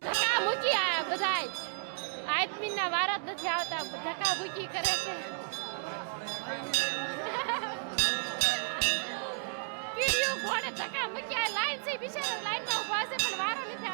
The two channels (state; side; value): silent; left; digital silence